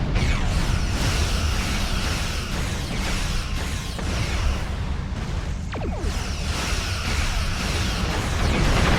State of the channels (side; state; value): both; identical; correlation 1.00